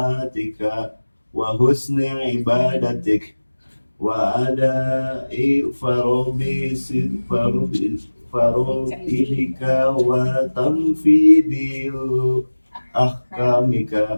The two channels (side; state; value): both; inverted; correlation -1.00